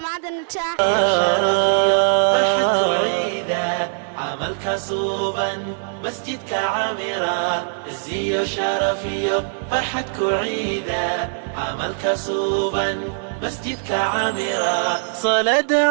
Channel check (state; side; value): silent; left; 62 dB below the other